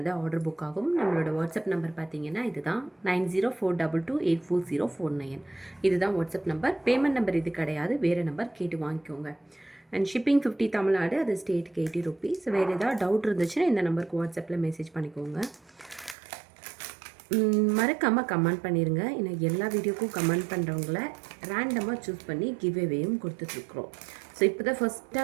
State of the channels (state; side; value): drops out; left; at 16.2 s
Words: ஆர்டர் புக் ஆகும். நம்மளோட வாட்ஸ்அப் நம்பர் பார்த்தீங்கன்னா இதுதான் 9042228409. இதுதான் வாட்ஸ்அப் நம்பர். பேமெண்ட் நம்பர் இது கிடையாது, வேறு நம்பர் கேட்டு வாங்கிக்கோங்க. அண்ட் ஷிப்பிங் 50 தமிழ்நாடு, அது ஸ்டேட்டுக்கு 80 ருபீஸ். வேறு ஏதாவது டவுட் இருந்துச்சுன்னா இந்த நம்பருக்கு வாட்ஸ்அப்பில் மெசேஜ் பண்ணிக்கோங்க. மறக்காமல் கமெண்ட் பண்ணிடுங்க. ஏன்னா எல்லா வீடியோக்கும் கமெண்ட் பண்ணுறவங்கள ரேண்டமாக சூஸ் பண்ணி கிவ்அவேயும் கொடுத்துட்ருக்குறோம். ஸோ இப்போ தான் ஃபஸ்ட்டாக